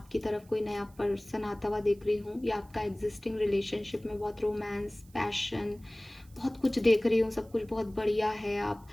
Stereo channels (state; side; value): noise; right; hiss, 28 dB below the sound